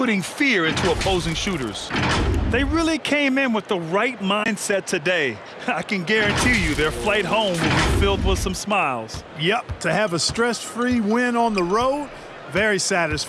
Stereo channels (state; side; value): identical; both; correlation 1.00